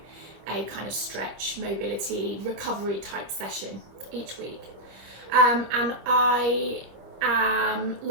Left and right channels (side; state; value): left; late; 26 ms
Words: a kind of stretch, mobility, recovery type session each week. And I am,